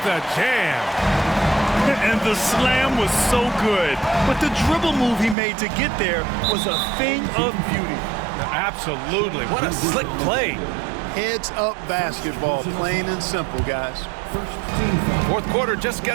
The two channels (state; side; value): drops out; left; at 5.4 s